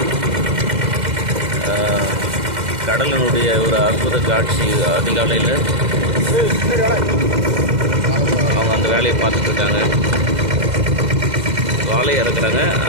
கடலினுடைய ஒரு அற்புத காட்சி. அதிகாலையில் அவங்க அந்த வேலையை பார்த்துட்ருக்காங்க. வாழையை இறக்குறாங்க.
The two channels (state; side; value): late; left; 2.0 ms